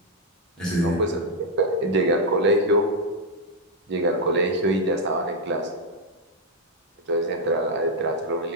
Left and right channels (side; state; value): both; normal; correlation -0.01